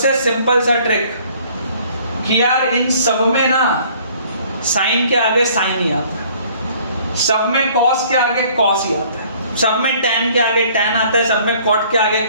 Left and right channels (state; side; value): inverted; both; correlation -0.57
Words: सिंपल सा ट्रिक कि यार इन सब में ना साइन के आगे साइन ही आता है, सब में कॉस के आगे कॉस ही आता है, सब में टैन के आगे टैन आता है, सब में कॉट के आगे